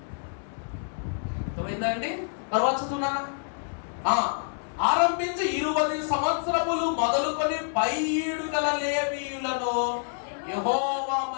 అర్థమైందండి? మరొక చదువునానా? ఆరంభించి 20 సంవత్సరములు మొదలుకొని 7 గల లేవీయులను యెహోవా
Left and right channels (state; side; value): silent; right; digital silence